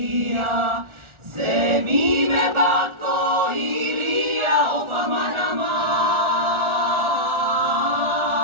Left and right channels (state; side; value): late; left; 1.4 ms